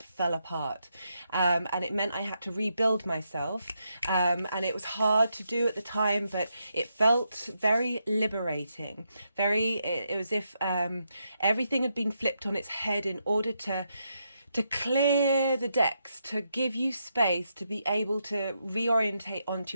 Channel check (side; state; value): both; inverted; correlation -0.82